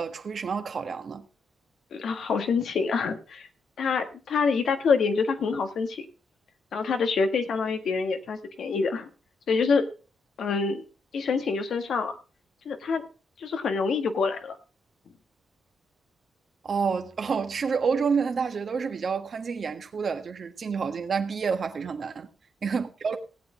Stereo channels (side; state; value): both; normal; correlation 0.77